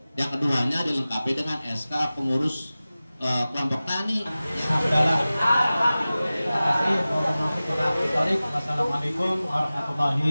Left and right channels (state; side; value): inverted; both; correlation -0.97